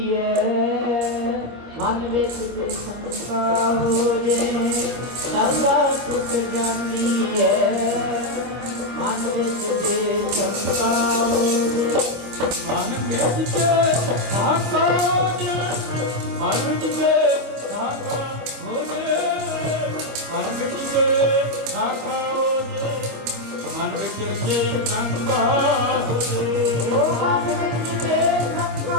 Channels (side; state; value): left; late; 25 ms